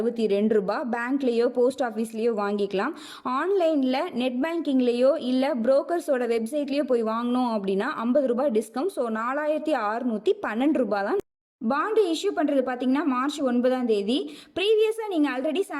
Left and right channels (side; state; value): both; identical; correlation 1.00